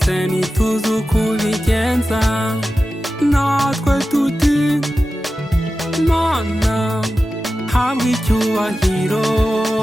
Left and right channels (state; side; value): normal; both; correlation 0.93